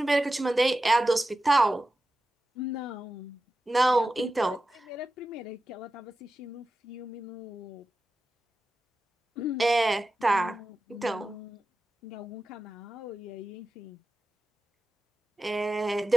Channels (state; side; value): normal; both; correlation 0.93